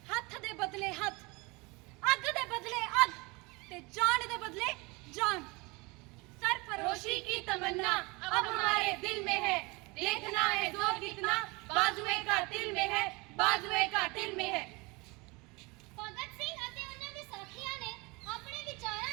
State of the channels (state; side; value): quieter; left; 26.3 dB